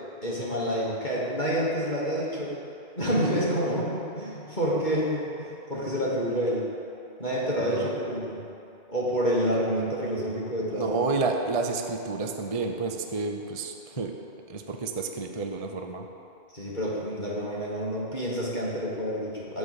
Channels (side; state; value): right; late; 1.7 ms